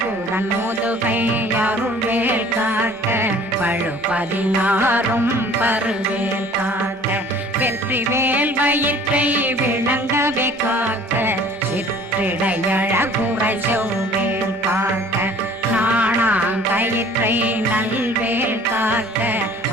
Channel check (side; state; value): both; normal; correlation 0.50